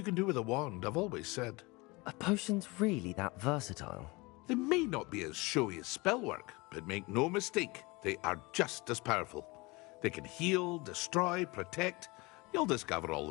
can do with a wand, I've always said. Are potions really that versatile? They may not be as showy as spellwork, but make no mistake, they are just as powerful. They can heal, destroy, protect. You'll discover all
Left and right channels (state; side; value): quieter; right; 24.7 dB